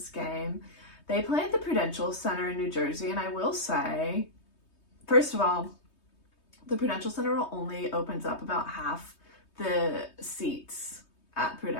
game. They play at the Prudential Center in New Jersey, and I will say, first of all, the Prudential Center only opens up about half the seats at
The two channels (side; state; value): right; late; 3.2 ms